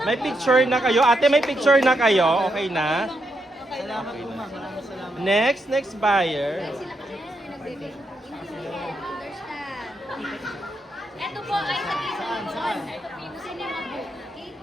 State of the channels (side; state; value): both; normal; correlation 0.81